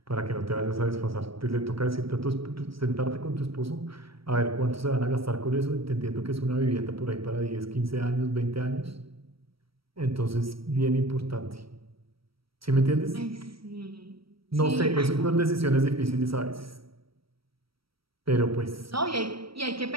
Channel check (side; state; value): left; late; 0.75 ms